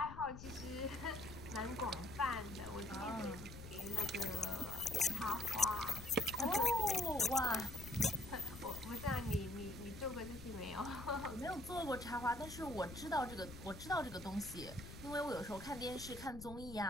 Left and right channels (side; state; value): left; noise; rumble, 12 dB below the sound